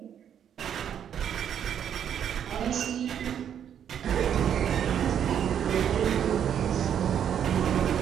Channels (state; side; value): quieter; left; 9.0 dB